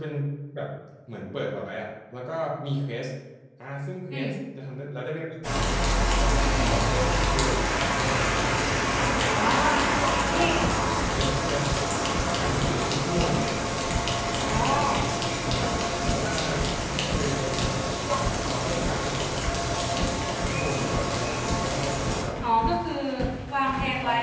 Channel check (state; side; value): identical; both; correlation 1.00